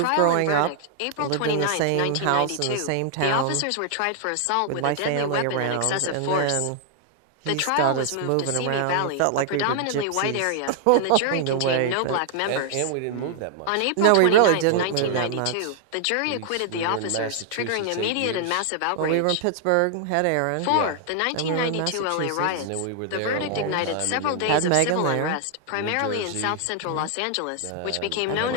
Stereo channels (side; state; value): both; different; correlation 0.00